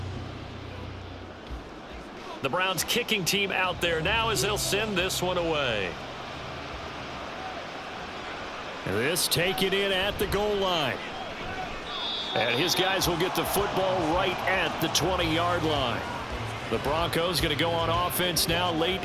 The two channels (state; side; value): identical; both; correlation 1.00